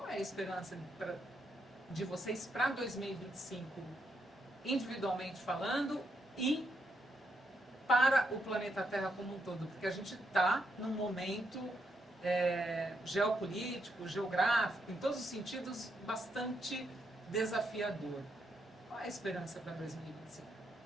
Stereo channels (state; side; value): normal; both; correlation 0.79